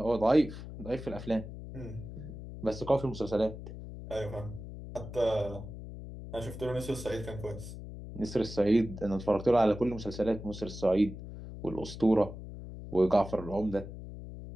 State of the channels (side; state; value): left; noise; hum, 11 dB below the sound